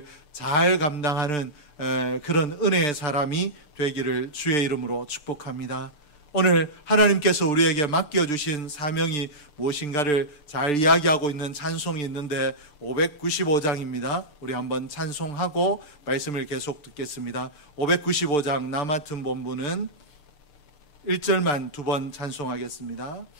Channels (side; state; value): right; late; 6.8 ms